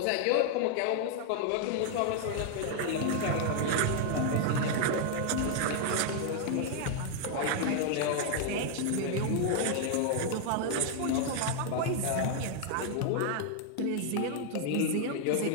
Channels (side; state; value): both; different; correlation 0.00